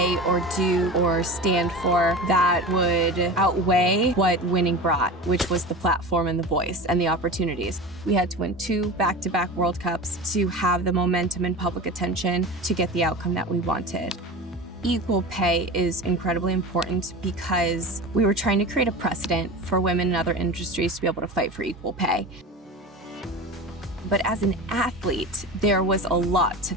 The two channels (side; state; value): both; normal; correlation 0.30